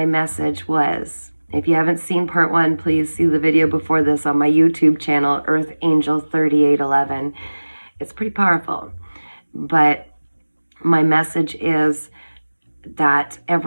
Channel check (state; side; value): inverted; both; correlation -1.00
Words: message was, if you haven't seen part 1, please see the video before this on my YouTube channel, Earth Angel 3811. It's pretty powerful. But my message is that